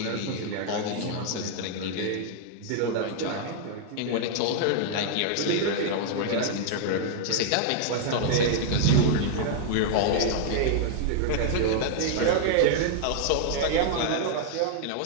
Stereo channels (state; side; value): different; both; correlation -0.01